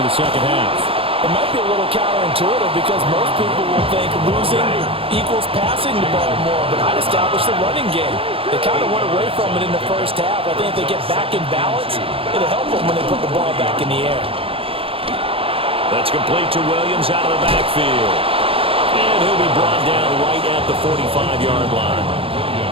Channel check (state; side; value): late; left; 0.27 ms